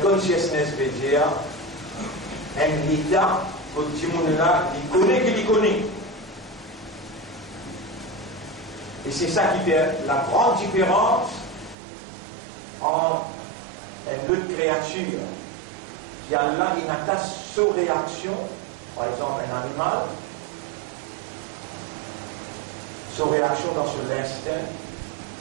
consciousness veut dire un état que tout le monde là, il connaît qu'il y connaît. Et c'est ça qui fait la grande différence entre une autre créature qui a là une attache sous réaction, par exemple un animal, sous réaction dans l'instinct.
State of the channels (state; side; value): drops out; left; at 11.8 s